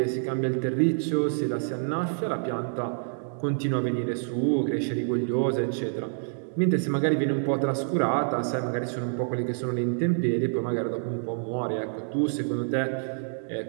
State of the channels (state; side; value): silent; left; digital silence